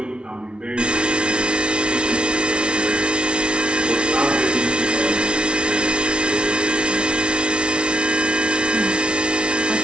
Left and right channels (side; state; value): left; late; 0.057 ms